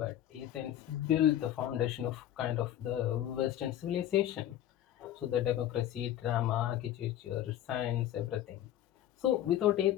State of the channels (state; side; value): quieter; right; 12.0 dB